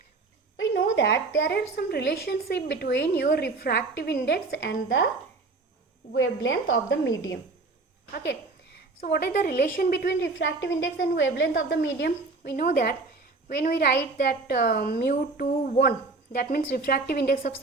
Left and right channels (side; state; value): left; quieter; 3.7 dB